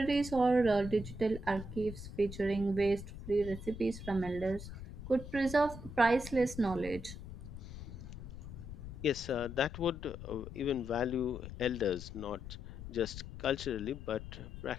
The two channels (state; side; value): noise; left; rumble, 11 dB below the sound